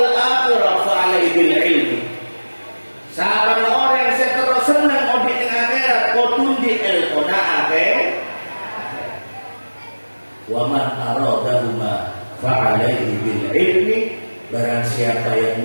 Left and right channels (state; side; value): inverted; both; correlation -1.00